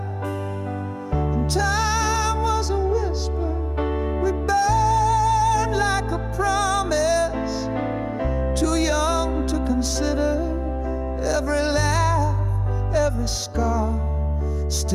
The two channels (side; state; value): both; identical; correlation 1.00